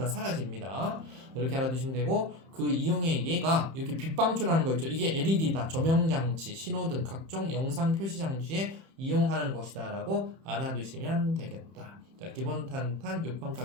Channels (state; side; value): late; left; 31 ms